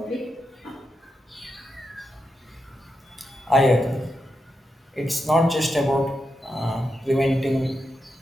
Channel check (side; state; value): both; normal; correlation 0.86